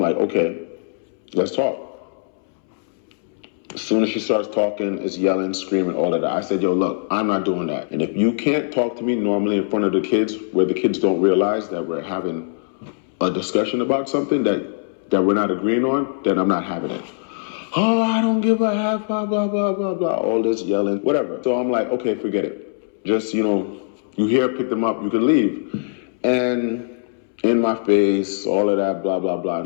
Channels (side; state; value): right; silent; 65 dB below the other